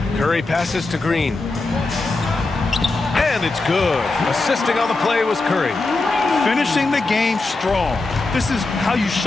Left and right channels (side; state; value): right; quieter; 3.4 dB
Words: Curry passes to Green. And it's good. Assisting on the play was Curry. Finishing the game strong. This is how you